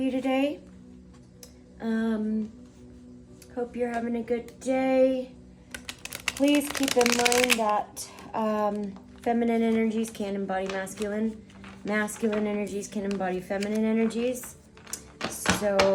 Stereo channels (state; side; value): identical; both; correlation 1.00